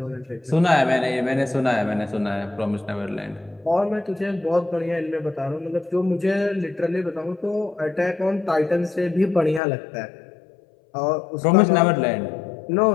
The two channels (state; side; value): drops out; right; at 9.6 s